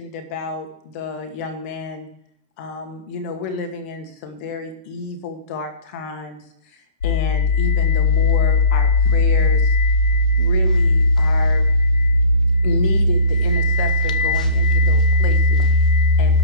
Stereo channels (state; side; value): inverted; both; correlation -0.41